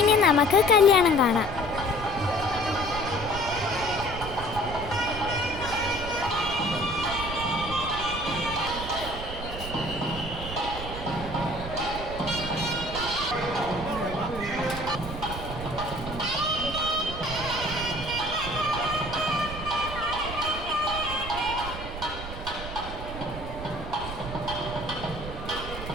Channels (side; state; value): right; noise; rumble, 9 dB below the sound